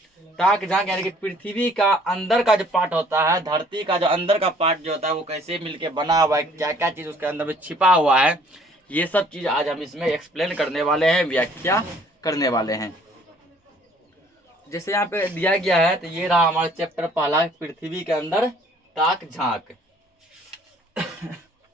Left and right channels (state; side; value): normal; both; correlation 0.57